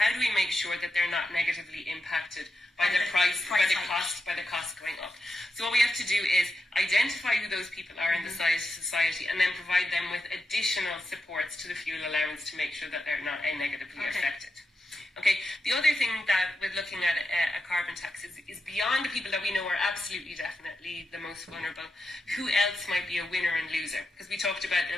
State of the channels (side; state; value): both; normal; correlation 0.87